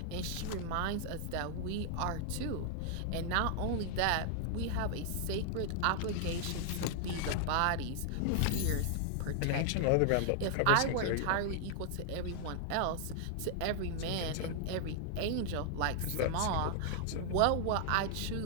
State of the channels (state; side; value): different; both; correlation 0.00